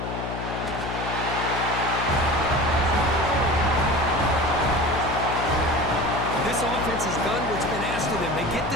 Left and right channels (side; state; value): left; noise; hum, 6 dB below the sound